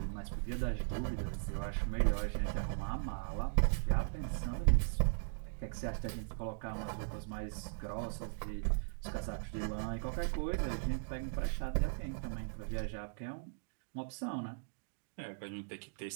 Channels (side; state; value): left; silent; digital silence